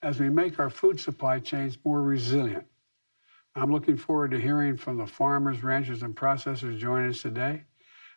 as we make our food supply chains more resilient. I'm looking forward to hearing from the farmers, ranchers, and processors joining us today.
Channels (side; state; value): both; inverted; correlation -1.00